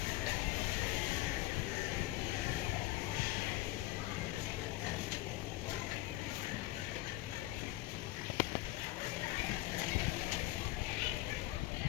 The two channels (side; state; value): right; quieter; 17.9 dB